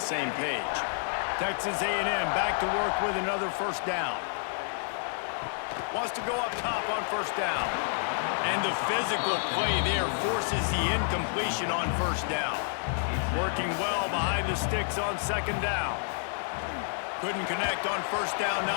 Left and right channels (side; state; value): right; silent; digital silence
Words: same page. Texas A&M back to work with another first down. Wants to go up top on first down. And the physical play there forces the incompletion on first down. Working well behind the sticks on 2nd down. Couldn't connect on first down,